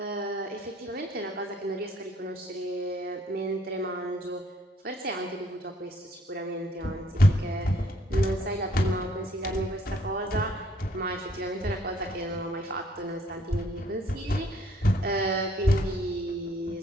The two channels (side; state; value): both; normal; correlation 0.64